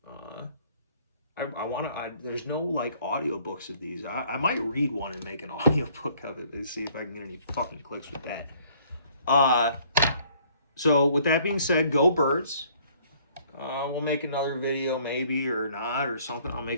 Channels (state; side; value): inverted; both; correlation -0.60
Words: There's no like audiobooks of these. I might read one and make an audiobook of it and see if I can get any fucking clicks with that. So with that being said, go birds. We'll make another video maybe or not or something. I'll